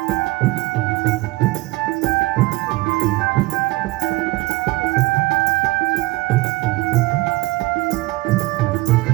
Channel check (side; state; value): left; quieter; 20.3 dB